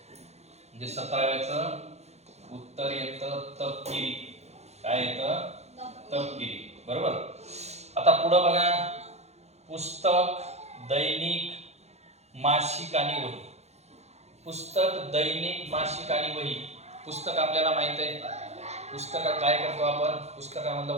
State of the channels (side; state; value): left; late; 0.31 ms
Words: म्हणजे 17व्याचं उत्तर येतं तपकिरी. काय येतं? तपकिरी. बरोबर. आता पुढं बघा, पुस्तक, दैनिक, मासिक आणि वही. पुस्तक, दैनिक, मासिक आणि वही. पुस्तक आपल्याला माहित आहे, पुस्तकात काय करतो आपण? पुस्तकामधलं